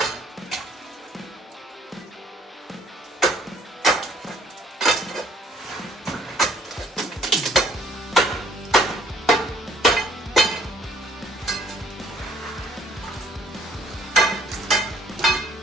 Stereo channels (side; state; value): both; normal; correlation 0.61